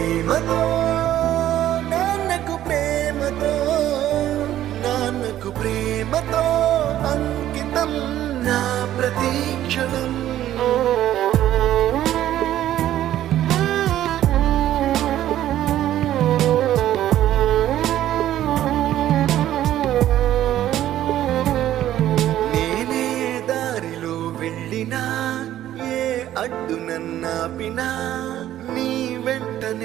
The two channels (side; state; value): left; quieter; 12.6 dB